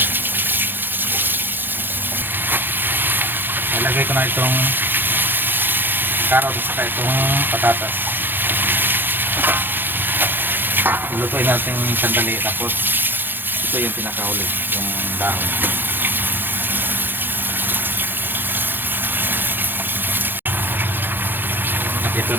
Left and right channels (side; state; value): left; late; 0.096 ms